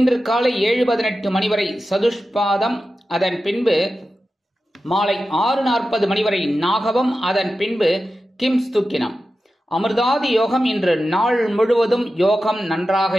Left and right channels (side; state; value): both; normal; correlation 0.92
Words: காலை 7:18 மணி வரை சதுஷ்பாதம், அதன் பின்பு மாலை 6:40 மணி வரை நாகவம், அதன் பின்பு கிம்ஸ்துக்கினம். அமிர்தாதி யோகம் இன்று நாள் முழுவதும் யோகம் நன்றாக